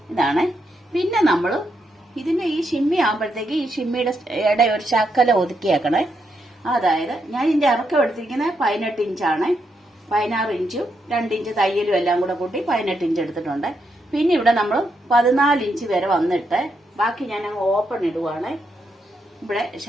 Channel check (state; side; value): normal; both; correlation 0.81